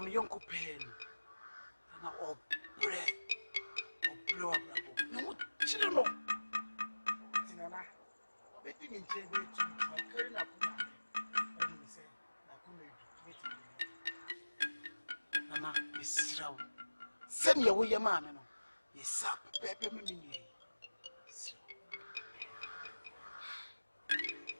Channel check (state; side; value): inverted; both; correlation -1.00